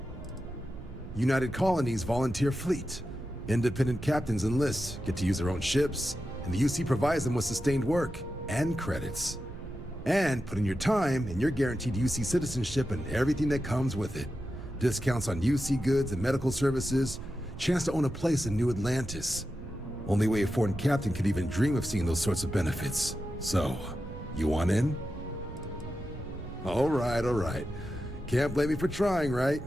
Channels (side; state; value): right; noise; rumble, 13 dB below the sound